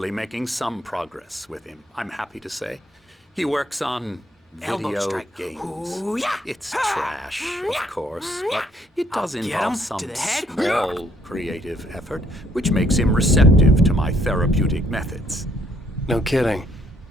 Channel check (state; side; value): normal; both; correlation 0.68